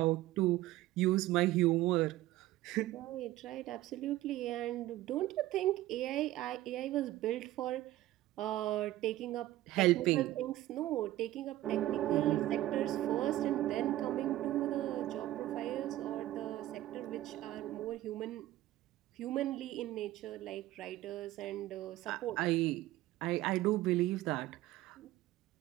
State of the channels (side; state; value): left; quieter; 15.5 dB